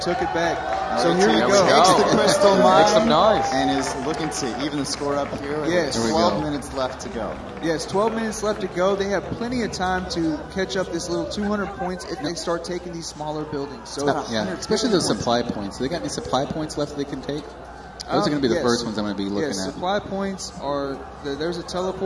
took it back. So here we Takes go. the crystal mine. Make some noise. And is looking to even the score up here. Yes. With 12 minutes left to go. Yes, 12 minutes left to go. They have plenty of time to catch up this little 200 points if they start taking these smaller buildings. So especially those supply points. Do they got any supply points left they can take? Those are going to be the first ones I'm going to be looking at. Supply points are there's a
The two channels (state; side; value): identical; both; correlation 1.00